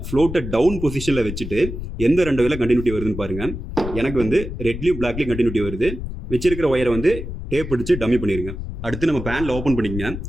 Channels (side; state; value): left; noise; rumble, 8 dB below the sound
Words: ஃப்ளோட்டை டவுன் பொசிஷனில் வச்சுட்டு எந்த 2 வயரில் கண்டினியூட்டி வருதுன்னு பாருங்கள். எனக்கு வந்து ரெட்லேயும் பிளாக்லேயும் கண்டினியூட்டி வருது. வச்சிருக்கிற ஒயரை வந்து டேப் அடிச்சு டம்மி பண்ணிடுங்க. அடுத்து நம்ம பேனில் ஓப்பன் பண்ணிக்கங்க.